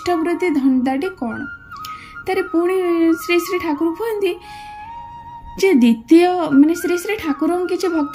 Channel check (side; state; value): both; identical; correlation 1.00